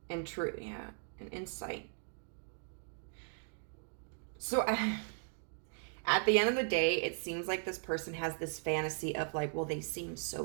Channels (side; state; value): left; silent; 53 dB below the other